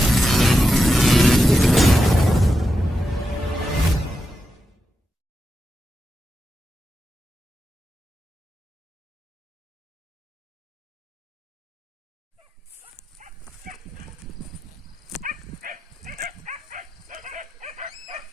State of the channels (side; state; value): both; normal; correlation 0.89